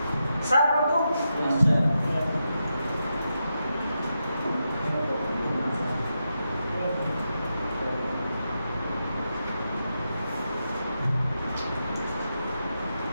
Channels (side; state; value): both; inverted; correlation -0.87